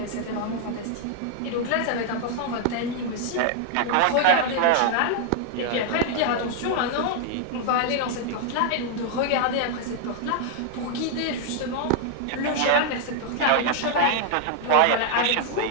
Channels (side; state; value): both; different; correlation 0.00